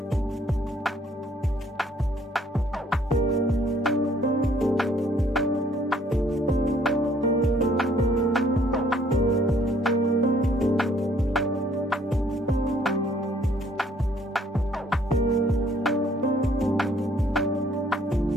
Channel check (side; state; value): both; normal; correlation 0.62